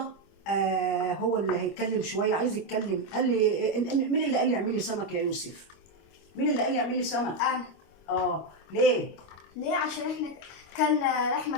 هو اللي هيتكلم شويه، عايز يتكلم. قال لي مين اللي قال لي اعملي سمك يا يوسف؟ مين اللي قال لي اعملي سمك؟ أنا. ليه؟ ليه؟ عشان احنا كلنا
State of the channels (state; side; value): late; right; 25 ms